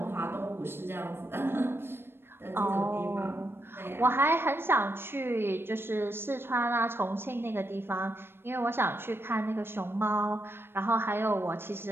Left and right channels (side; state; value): left; late; 0.11 ms